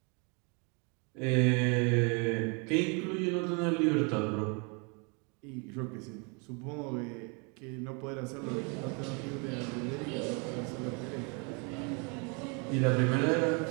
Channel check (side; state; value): left; quieter; 33.8 dB